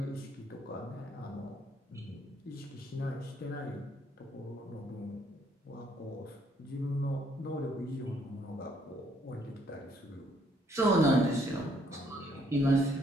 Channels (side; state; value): both; normal; correlation 0.68